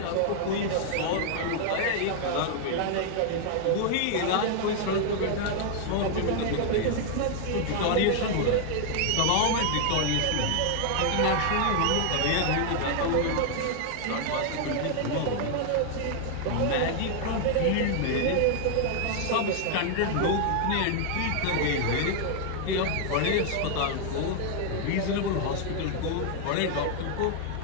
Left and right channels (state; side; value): different; both; correlation 0.00